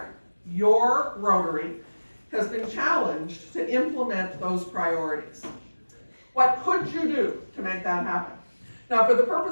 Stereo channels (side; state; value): both; inverted; correlation -1.00